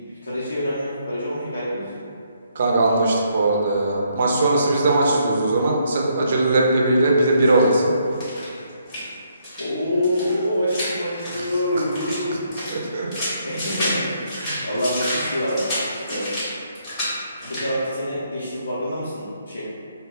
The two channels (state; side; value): inverted; both; correlation -0.72